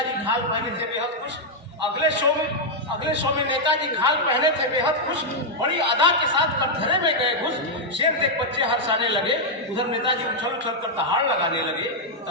खाल पहने थे बेहद खुश। अगले शो में नेताजी खाल पहने थे बेहद खुश। बड़ी अदा के साथ कटघरे में गए घुस। शेर देख बच्चे हर्षाने लगे, उधर नेताजी उछल उछल कर दहाड़ लगाने लगे।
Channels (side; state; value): both; normal; correlation -0.03